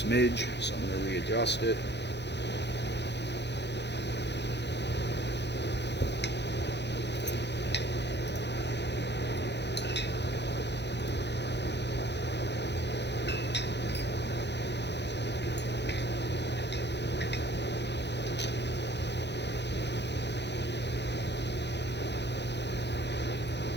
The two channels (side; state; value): right; late; 0.50 ms